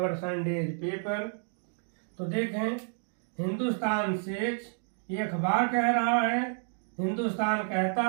Sunday's paper। तो देखें Hindustan says, ये अखबार कह रहा है, हिंदुस्तान कहता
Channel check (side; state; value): left; silent; 58 dB below the other